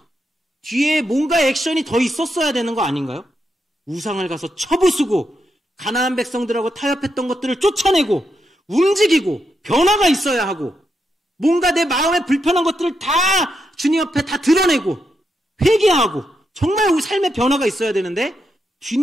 뒤에 뭔가 액션이 더 있었어야 되는 거 아닌가요? 우상을 가서 쳐부수고 가나안 백성들하고 타협했던 것들을 쫓아내고 움직이고 변화가 있어야 하고 뭔가 내 마음에 불편한 것들을 다 주님 앞에 다 드러내고 회개하고 정말 우리 삶의 변화가 있어야 되는데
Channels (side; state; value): both; normal; correlation 0.83